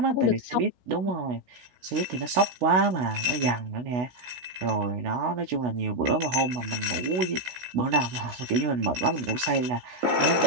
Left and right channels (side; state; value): left; late; 16 ms